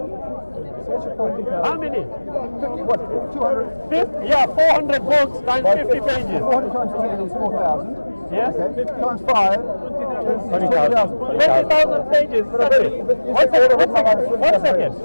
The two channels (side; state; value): both; inverted; correlation -1.00